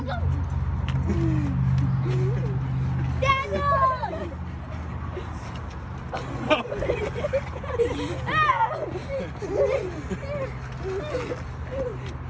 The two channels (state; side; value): identical; both; correlation 1.00